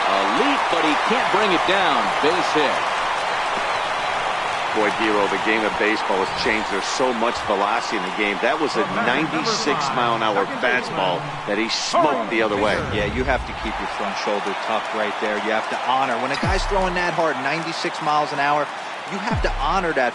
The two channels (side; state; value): both; identical; correlation 1.00